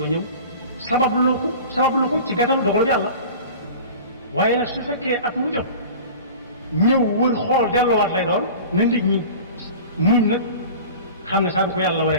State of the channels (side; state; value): both; inverted; correlation -0.39